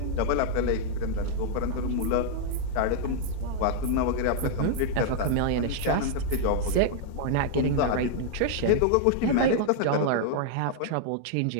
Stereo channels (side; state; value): both; different; correlation -0.01